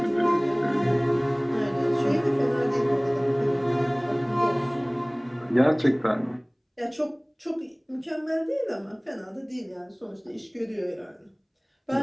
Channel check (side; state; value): both; identical; correlation 1.00